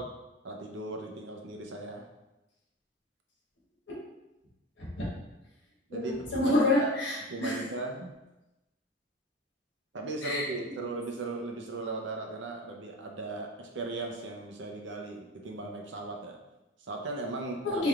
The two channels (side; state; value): both; normal; correlation 0.30